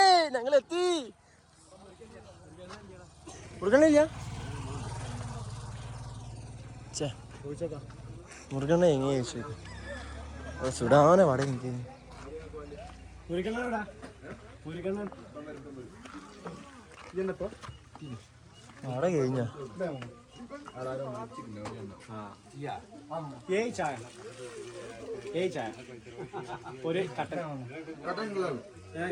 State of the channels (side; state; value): both; identical; correlation 1.00